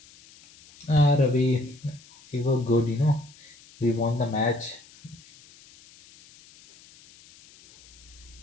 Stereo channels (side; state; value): left; noise; hiss, 25 dB below the sound